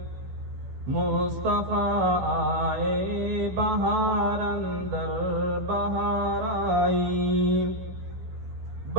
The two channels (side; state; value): left; late; 16 ms